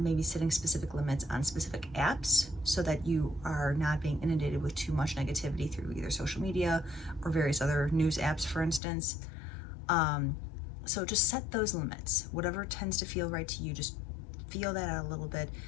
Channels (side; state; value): right; drops out; at 8.8 s